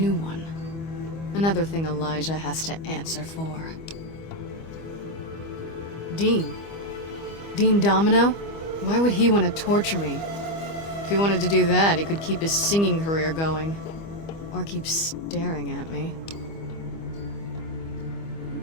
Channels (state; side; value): late; right; 25 ms